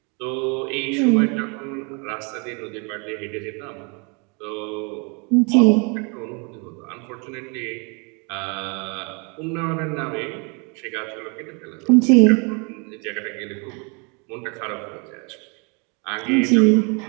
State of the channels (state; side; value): quieter; left; 32.9 dB